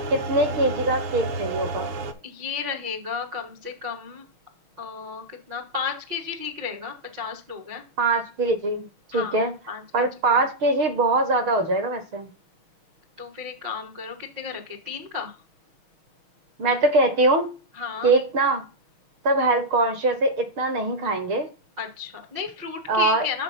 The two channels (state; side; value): late; left; 6.3 ms